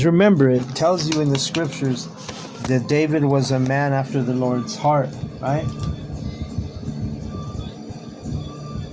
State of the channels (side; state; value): both; identical; correlation 1.00